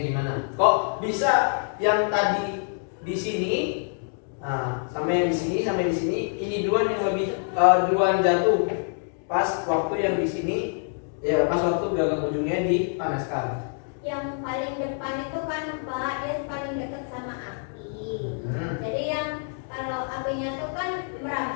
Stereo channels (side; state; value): right; silent; 61 dB below the other